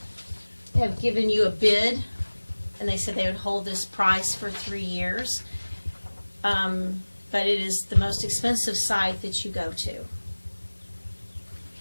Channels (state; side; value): inverted; both; correlation -1.00